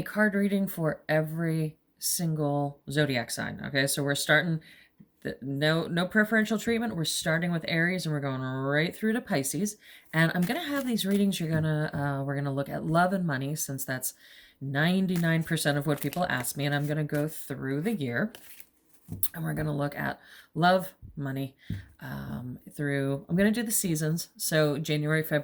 card reading for every single zodiac sign. Okay, so we're starting no preferential treatment. We're starting with Aries and we're going right through to Pisces. And I'm going to have these readings. We're going to look at love and money, since that's 99% of what people ask me, and I'm going to go through the year. And we're going to look at love, money, I'm going to do the seasons. So January,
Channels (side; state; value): both; identical; correlation 1.00